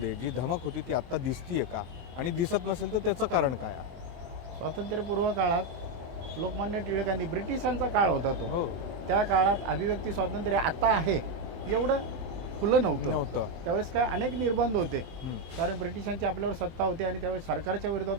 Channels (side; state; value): left; late; 24 ms